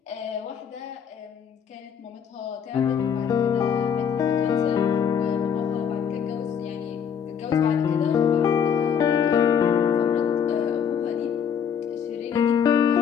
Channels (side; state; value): right; quieter; 7.8 dB